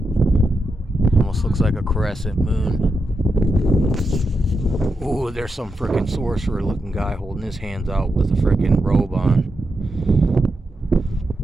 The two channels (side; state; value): both; normal; correlation 0.86